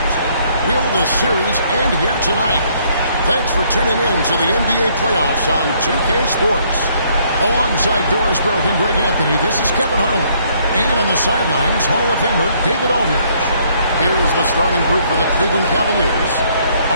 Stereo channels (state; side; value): inverted; both; correlation -0.66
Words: Will the series end here tonight? Thanks for tuning in to the NBA playoffs on 2K Sports. Alongside Doris Burke and Greg Anthony, this is Kevin Harlan. And on the sidelines, Hall of Famer David Aldridge. Here's the starting group for the Cleveland Cavaliers.